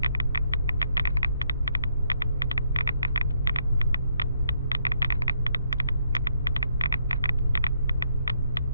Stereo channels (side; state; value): both; inverted; correlation -0.72